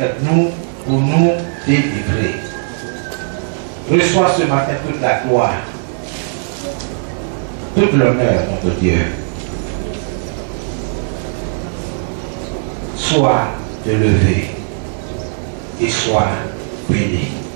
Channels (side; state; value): left; silent; 63 dB below the other